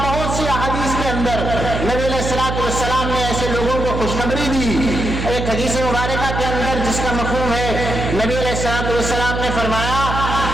سی احادیث کے اندر نبی علیہ الصلوۃ والسلام نے ایسے لوگوں کو خوشخبری دی۔ ایک حدیث مبارکہ کے اندر جس کا مفہوم ہے، نبی علیہ الصلوۃ والسلام نے فرمایا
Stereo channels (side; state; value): right; noise; hum, 3 dB below the sound